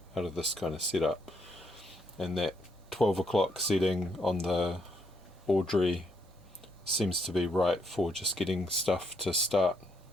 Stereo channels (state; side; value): normal; both; correlation 0.74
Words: out of this kind of setup. And that 12 o'clock setting on the Audrey seems to be right for just getting stuff to start